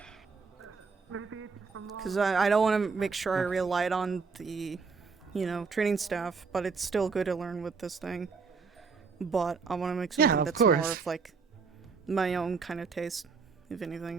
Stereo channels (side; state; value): left; quieter; 5.0 dB